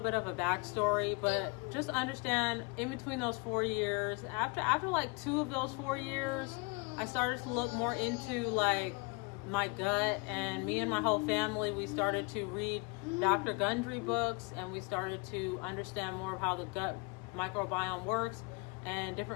of a backstory, but just understand, in between those 4 years, after like 2 of those 4 years, I started to look more into like my gut, and me and my whole family, we started to read Dr. Gundry books, and we started to understand more of how the gut microbiome works and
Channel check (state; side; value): quieter; right; 30.3 dB